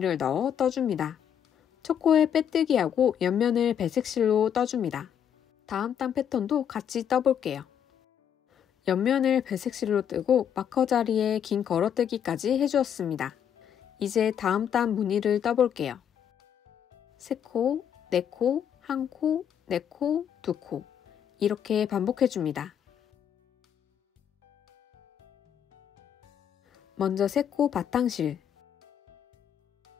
넣어 떠줍니다. 첫 코에 빼뜨기하고 옆면을 배색실로 떠줍니다. 다음 단 패턴도 같이 떠볼게요. 옆면을 배색실로 뜨고 마커 자리에 긴 걸어뜨기까지 해주었습니다. 이제 다음 단 무늬를 떠볼게요. 세 코, 네 코, 한 코, 네 코, 두 코 이렇게 반복해줍니다. 먼저 세 코 바탕실.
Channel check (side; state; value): right; quieter; 8.8 dB